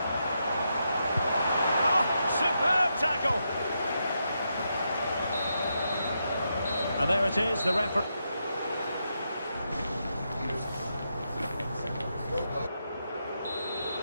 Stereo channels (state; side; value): inverted; both; correlation -0.83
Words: Oh, superb tackle. And there it is, the referee.